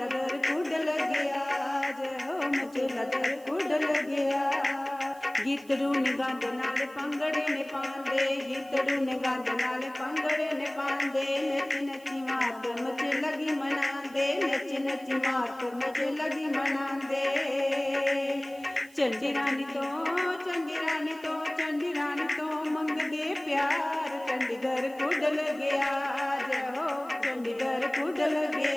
दर कुड लग्या जय हो मचेला दर कुड लग्या। गीतड़ू ने गंद नाल पंगड़े ने पांदे गीतड़ू ने गंद नाल पंगड़े ने पांदे नच नची मात मचे लगी मनांदे नच नची मात मचे लगी मनांदे। चंडी रानी तो मंगदे प्यार चंडीगढ़ कुड लग्या जय हो चंडीगढ़ कुड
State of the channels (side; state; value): right; noise; hiss, 25 dB below the sound